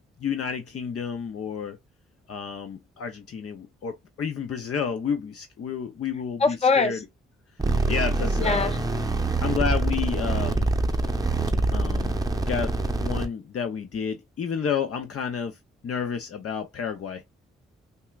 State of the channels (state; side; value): normal; both; correlation 0.59